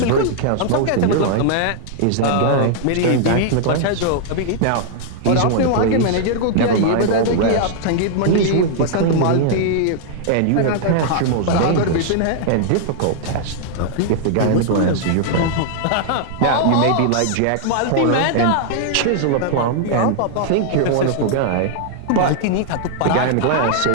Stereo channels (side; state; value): both; different; correlation -0.01